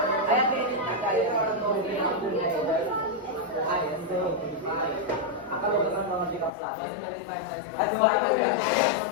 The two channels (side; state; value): right; drops out; at 6.5 s